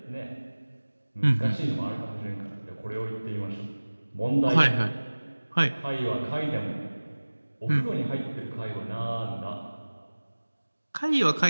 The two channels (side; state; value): both; inverted; correlation -1.00